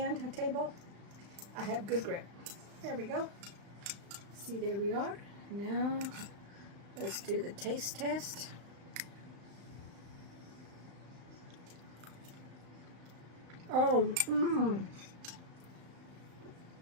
table, I have good grip. There we go. See, there we are. Now, let's do the taste test. Oh,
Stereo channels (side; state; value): left; late; 35 ms